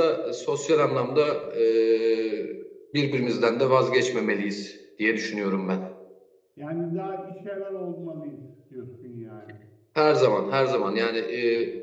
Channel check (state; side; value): identical; both; correlation 1.00